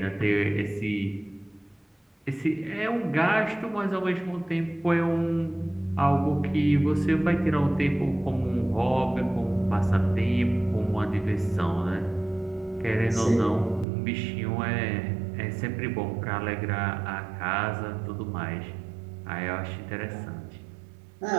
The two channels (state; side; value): drops out; left; at 13.9 s